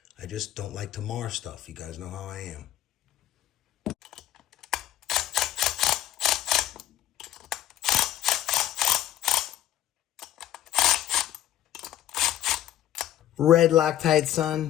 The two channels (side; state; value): right; quieter; 12.8 dB